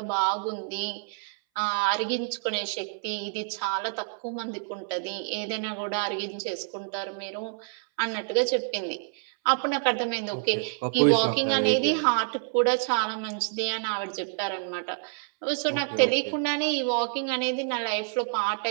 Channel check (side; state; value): left; silent; 59 dB below the other